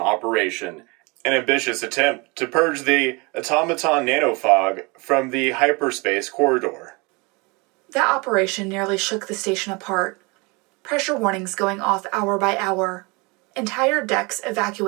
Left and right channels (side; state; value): left; quieter; 27.7 dB